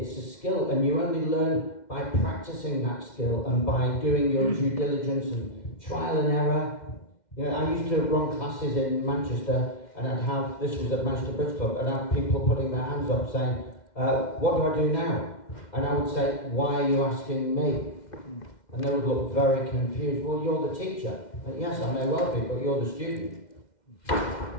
a skill, and you only learn by practicing that skill and by doing your due diligence and trial and error. I used to run classes in Manchester, and I'd have, this was at Manchester Bridge Club, and I'd have people putting their hands up saying, what do I do now? And I would say, why are you asking me? And they would look very confused. Well, you're the teacher. And yes, I may well be, but you're the student.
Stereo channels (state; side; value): late; right; 2.1 ms